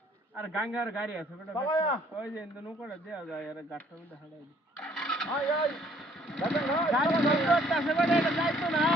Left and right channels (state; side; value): normal; both; correlation 0.61